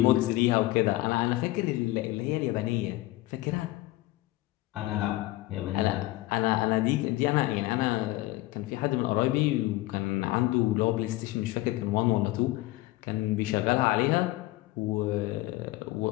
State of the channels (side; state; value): right; quieter; 18.2 dB